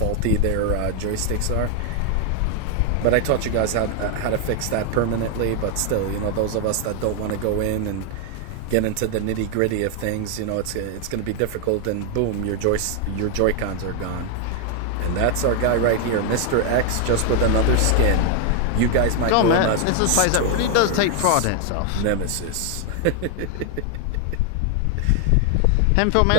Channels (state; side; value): different; both; correlation 0.01